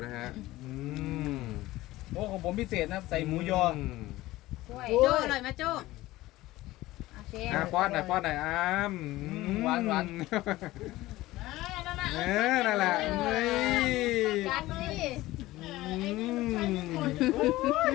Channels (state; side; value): quieter; right; 17.6 dB